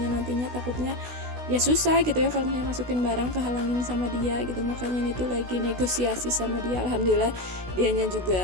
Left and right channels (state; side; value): late; left; 16 ms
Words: nantinya takutnya ya susah gitu ya kalau misalnya masukin barang kehalangin sama dia gitu. Makanya ini tuh lagi negosiasi sama dia. Alhamdulillah dianya